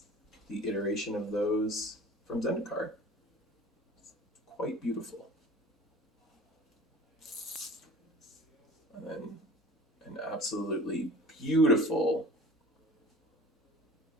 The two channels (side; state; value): both; normal; correlation 0.42